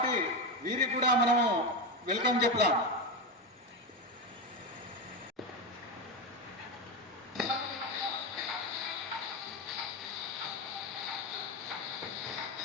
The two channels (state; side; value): normal; both; correlation 0.14